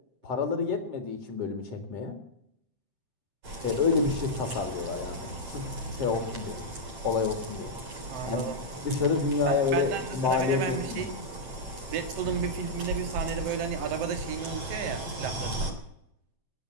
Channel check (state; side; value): late; left; 7.7 ms